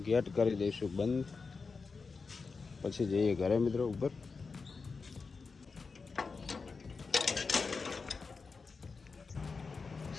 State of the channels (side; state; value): right; quieter; 4.6 dB